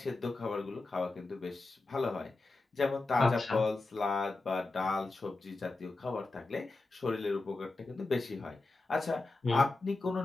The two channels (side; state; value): right; quieter; 3.3 dB